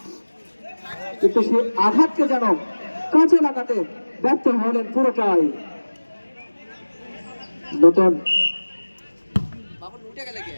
কিন্তু সে আঘাতকে যেন কাজে লাগাতে ব্যর্থ হলেন পুরোটাই। নতুন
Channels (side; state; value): both; inverted; correlation -1.00